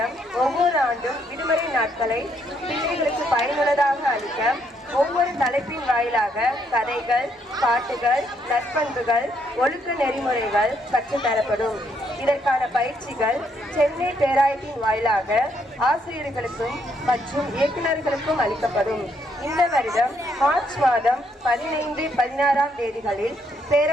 ஒவ்வொரு ஆண்டும் விடுமுறை நாட்களை பிள்ளைகளுக்கு பயனுள்ளதாக அளிக்க ஒவ்வொரு தலைப்பின் வாயிலாக கதைகள், பாட்டுகள், நற்பண்புகள், ஒழுக்க நெறிமுறைகள் கற்றுத்தரப்படும். இதற்கான பயிற்சிகள் சென்னை பேராயத்தின் வாயிலாக ஆசிரியர்களுக்கும் மற்றும் இயக்குநர்களுக்கும் அளிக்கப்படும். இந்த வருடம் மார்ச் மாதம் 15, 16ஆம் தேதிகளில்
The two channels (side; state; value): both; normal; correlation 0.73